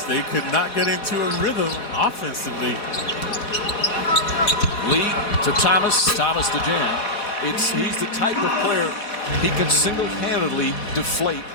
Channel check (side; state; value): right; late; 4.1 ms